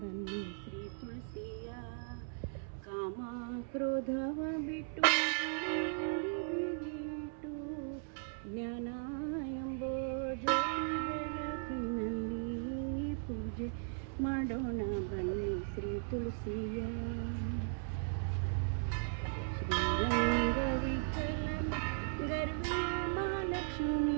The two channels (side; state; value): left; silent; 53 dB below the other